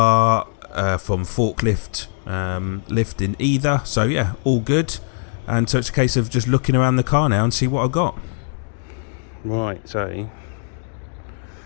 from forklift lifting either, so yeah, all good. And so it's a case of just looking around the car now and see what I got. Right, so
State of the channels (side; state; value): right; silent; 58 dB below the other